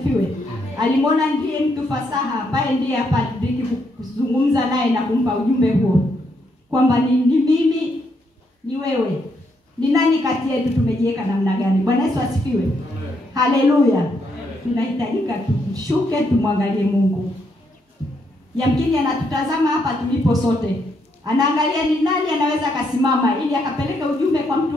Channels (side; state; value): both; normal; correlation 0.76